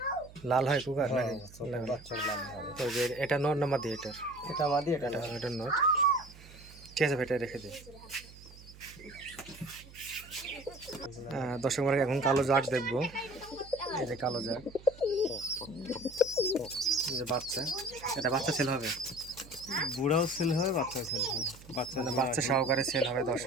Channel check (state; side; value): noise; right; hum, 19 dB below the sound